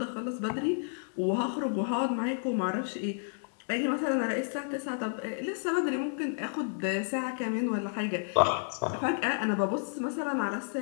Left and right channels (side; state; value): right; silent; digital silence